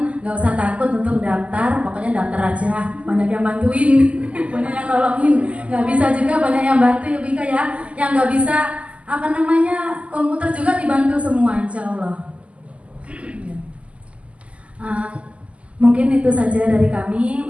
nggak usah takut untuk daftar, pokoknya daftar aja. Banyak yang bantuin, banyak yang nolongin. Nggak bisa juga banyak yang bantu ya Bika ya. Yang nggak bisa komputer juga dibantu semua insya Allah. Mungkin itu saja dari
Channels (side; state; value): left; late; 0.061 ms